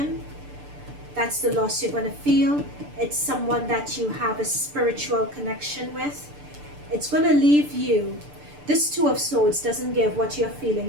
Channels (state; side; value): late; left; 6.8 ms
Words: That's the loss you're going to feel. It's someone that you have a spiritual connection with. It's going to leave you. This Two of Swords doesn't give what you're